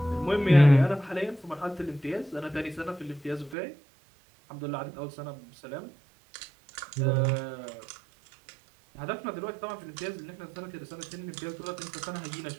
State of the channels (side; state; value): left; drops out; at 3.6 s